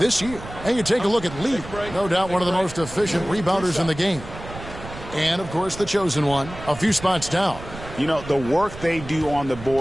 year. And you take a look at Lee. No doubt one of the most efficient rebounders in the game. And, of course, the chosen one, a few spots down. You know, the work they do on the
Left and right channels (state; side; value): noise; right; rumble, 13 dB below the sound